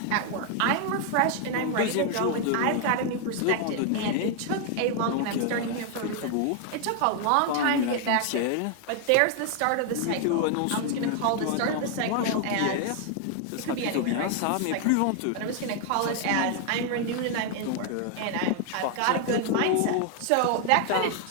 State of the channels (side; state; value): both; different; correlation 0.00